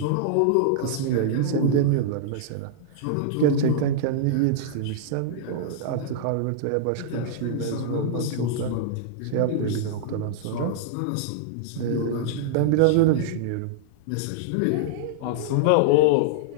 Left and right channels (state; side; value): different; both; correlation -0.01